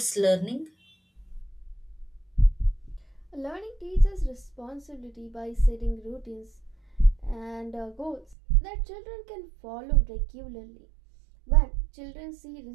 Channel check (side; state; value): left; drops out; at 8.3 s